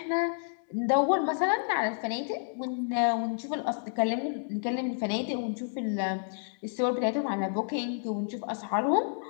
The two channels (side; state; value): right; silent; digital silence